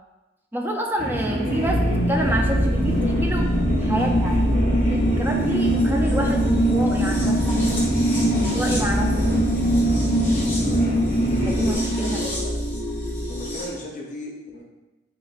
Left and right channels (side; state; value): both; normal; correlation 0.74